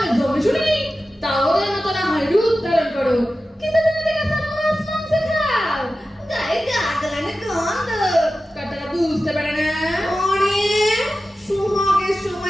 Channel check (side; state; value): both; normal; correlation 0.94